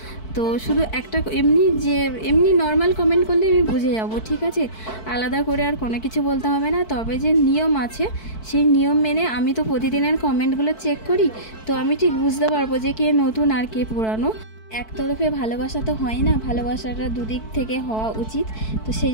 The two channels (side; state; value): right; late; 4.6 ms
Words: তো শুধু একটা এমনি নর্মাল কমেন্ট করলে আমি বুঝে যাব, ঠিক আছে? আলাদা করে আর কোনো কিছু বলতে হবে না। তবে যে নিয়ম আছে সেই নিয়ম মেনে আমি তো প্রতিদিনের কমেন্টগুলো চেক করি, তো আমি ঠিক বুঝতে পারবো যে কে নতুন আর কে পুরানো। একতরফে ভালোবাসা তো হয় না, ভালোবাসাটা দুদিক থেকে হওয়া উচিত। তো সেই